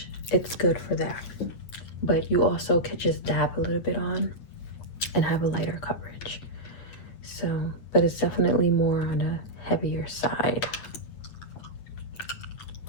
it's good for that. But you also could just dab a little bit on and have a lighter coverage. So, but it's definitely more on a heavier side.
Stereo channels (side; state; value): right; late; 9.1 ms